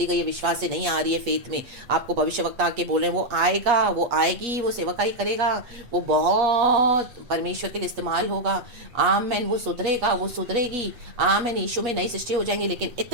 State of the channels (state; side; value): late; left; 8.4 ms